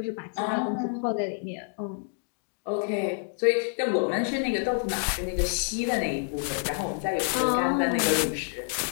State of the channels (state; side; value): silent; right; 59 dB below the other